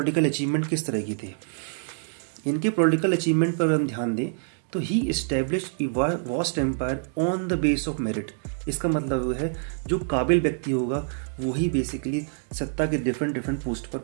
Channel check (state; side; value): silent; left; digital silence